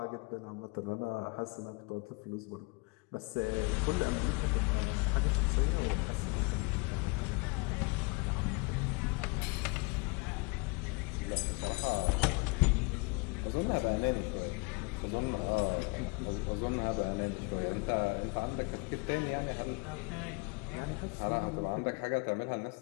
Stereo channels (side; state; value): right; quieter; 30.1 dB